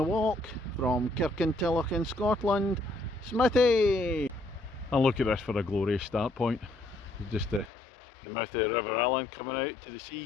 walk from Kirkintilloch in Scotland, Smithy! And look at this for a glorious start point. Just the mouth of the River Allen coming out to the sea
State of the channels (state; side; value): drops out; right; at 7.7 s